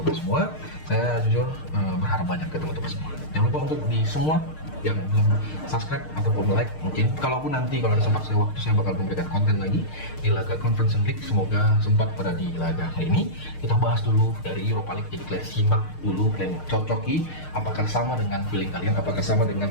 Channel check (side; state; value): right; late; 6.5 ms